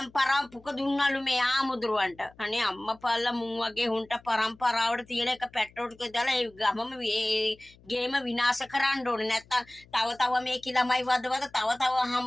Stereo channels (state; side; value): noise; left; hum, 27 dB below the sound